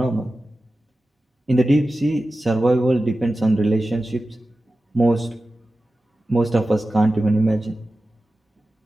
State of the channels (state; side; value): normal; both; correlation 0.94